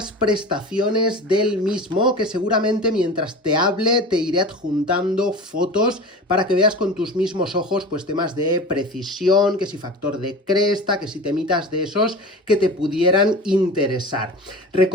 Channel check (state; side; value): normal; both; correlation 0.33